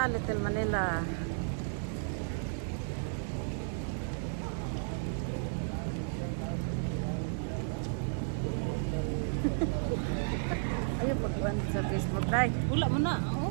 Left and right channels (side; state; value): left; silent; 56 dB below the other